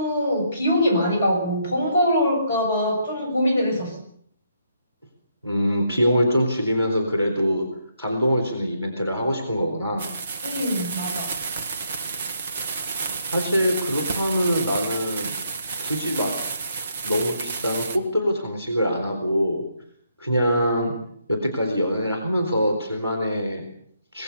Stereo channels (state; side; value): inverted; both; correlation -0.75